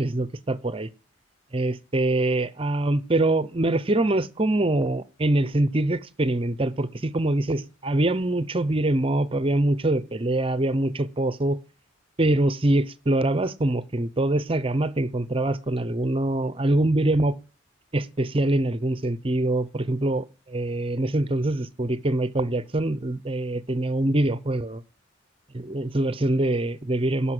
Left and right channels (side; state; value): both; normal; correlation 0.74